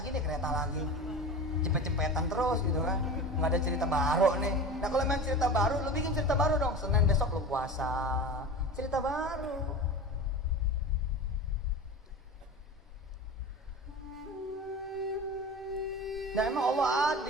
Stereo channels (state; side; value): normal; both; correlation 0.31